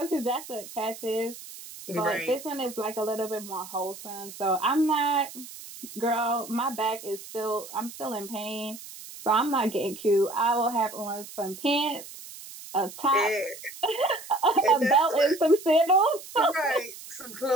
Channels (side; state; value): right; noise; hiss, 14 dB below the sound